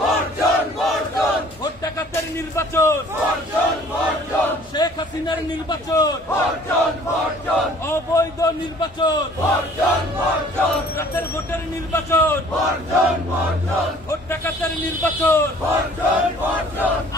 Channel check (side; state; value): both; normal; correlation 0.53